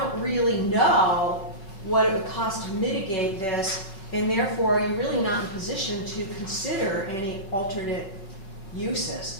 really know what it would cost to mitigate this, and therefore you're really not in position to consider any alternate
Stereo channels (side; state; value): right; late; 5.3 ms